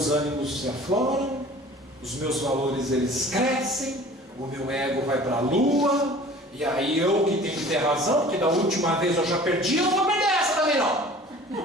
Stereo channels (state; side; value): normal; both; correlation 0.46